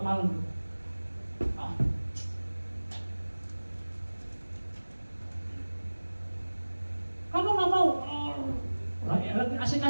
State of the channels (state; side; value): inverted; both; correlation -1.00